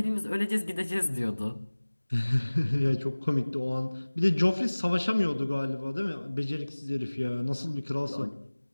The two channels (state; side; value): inverted; both; correlation -1.00